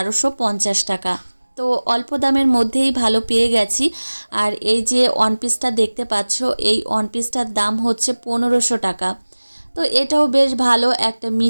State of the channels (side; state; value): both; inverted; correlation -1.00